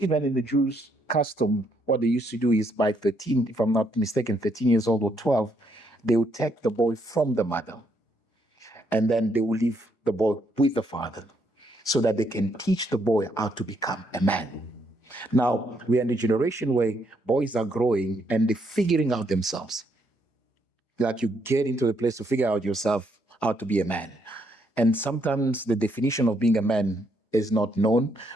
even in the Jews' custom, what they used to do is by 13, if I'm not mistaken, 13 years old or 12, they would take the boy from the mother and then they will leave the boy with the father so that they can teach the boy how to become a man. Now, we are in a generation where boys are growing and they're figuring out themselves. Like you get into a place to figure out yourself how to be a man. And sometimes the definition of being a man is not known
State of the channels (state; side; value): late; right; 4.9 ms